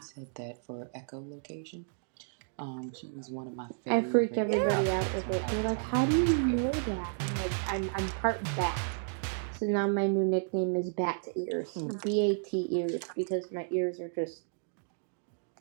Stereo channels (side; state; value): left; silent; digital silence